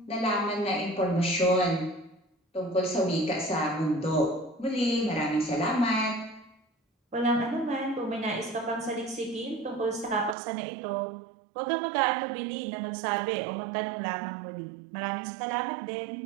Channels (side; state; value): left; drops out; at 10.4 s